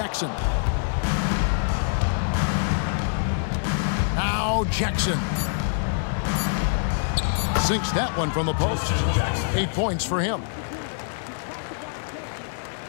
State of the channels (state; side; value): silent; right; digital silence